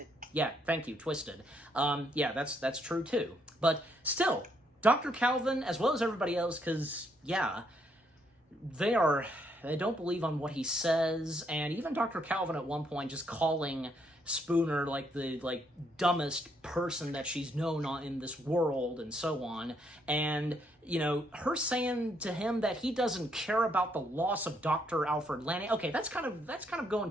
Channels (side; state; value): both; normal; correlation 0.73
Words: Yeah, thank you, Twisted. Yeah, that's true too. But still, Dr. Calvin, as well as everybody else, because, yeah, they don't believe on what he says, and even Dr. Calvin at one point just calling Spooner like the dumbest person that she's known in this world and so on, and her saying to him that he doesn't care about the loss of Dr. Alfred Lanning. Okay, that's kind of going